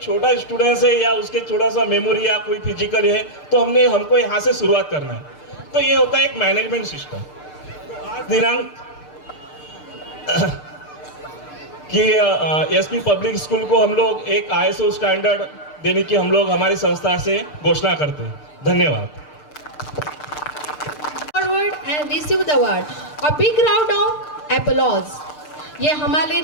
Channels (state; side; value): late; right; 6.7 ms